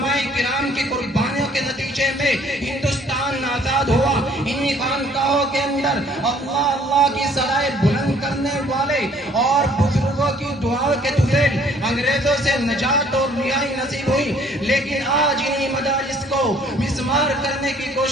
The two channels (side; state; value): both; normal; correlation 0.59